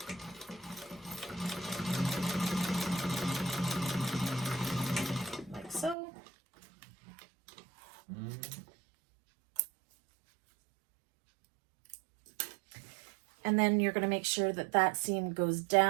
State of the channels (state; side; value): drops out; left; at 6.0 s